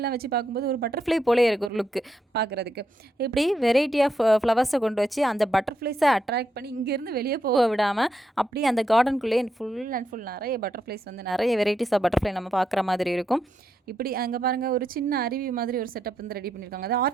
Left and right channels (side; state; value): both; normal; correlation 0.81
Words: வச்சு பார்க்கும்போது ஒரு பட்டர்ஃப்ளை போலே இருக்குது ஒரு லுக்கு பார்க்குறதுக்கு. இப்படி வெரைட்டி ஆஃப் ஃப்ளவர்ஸை கொண்டு வச்சு அந்த பட்டர்ஃப்ளைஸை அட்ராக்ட் பண்ணி இங்கேருந்து வெளியே போக விடாமல் அப்படி அந்த கார்டனுக்குள்ளேயே ஃபுல் அண்ட் ஃபுல் நிறைய பட்டர்ஃப்ளைஸ் வந்து நிறைய வெரைட்டிஸ் ஆஃப் பட்டர்ஃப்ளை நம்ம பார்க்குற மாதிரி இருக்கும். இப்படி அங்கே பாருங்கள், ஒரு சின்ன அருவி மாதிரி ஒரு செட்டப் வந்து ரெடி பண்ணியிருக்காங்க. அது